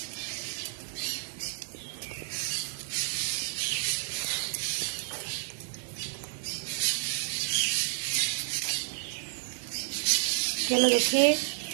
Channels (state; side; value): silent; left; digital silence